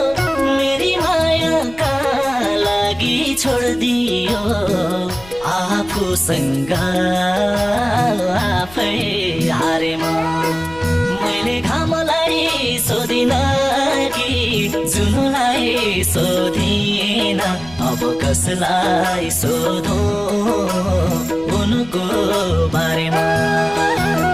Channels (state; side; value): noise; left; rumble, 20 dB below the sound